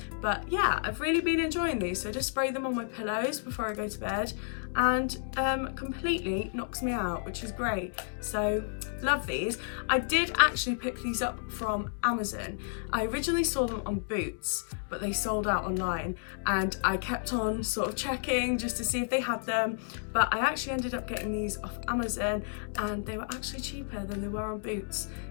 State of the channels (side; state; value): right; silent; digital silence